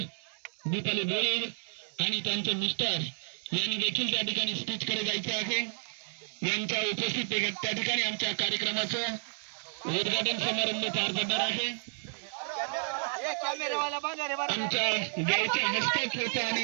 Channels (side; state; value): left; silent; 57 dB below the other